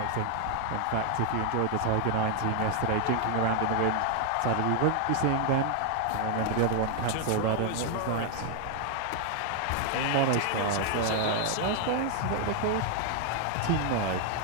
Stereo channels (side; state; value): both; different; correlation 0.00